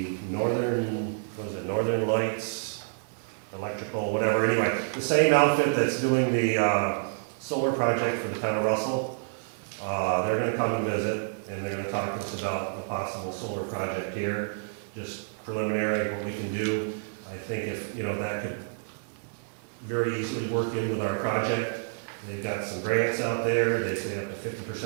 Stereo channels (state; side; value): silent; left; digital silence